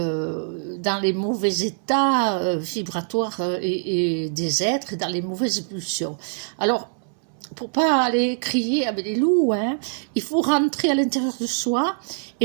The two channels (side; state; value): left; silent; digital silence